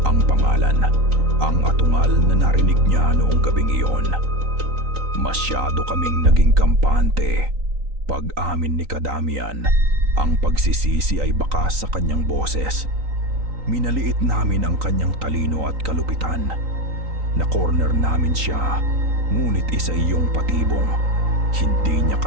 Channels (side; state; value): left; late; 3.9 ms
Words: Ang pangalan, ang atungal na narinig niya noong gabing iyon. Masyado kaming naging kampante." Pag-amin ni Ka Damian, ang pagsisisi ay bakas sa kanyang boses. "Minaliit namin ang kanyang talino at kalupitan. Na-corner namin siya. Ngunit isa iyong patibong. Hindi niya